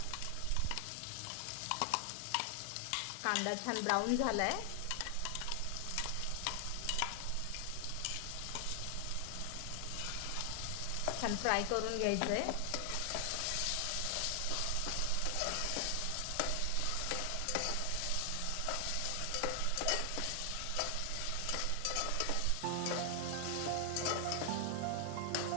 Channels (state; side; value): different; both; correlation 0.00